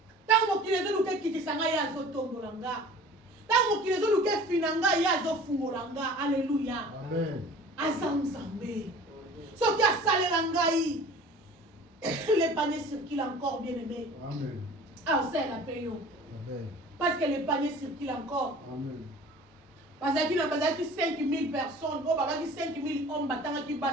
Tango kilezo luke kitisanga ya zotombola nga. Tango kilezo luke finanga ya zofungola nga. Alléluia. Amen. Azamzambe. Soki asalela ngai. Les paniers circulent encore, bien aimé. Amen. Ah, c'est la paix. Amen. Parce que les paniers circulent encore. Amen. Parce qu'il y a 5000 personnes. Oh, bah, 5000 hommes battant qui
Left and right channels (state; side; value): normal; both; correlation 0.44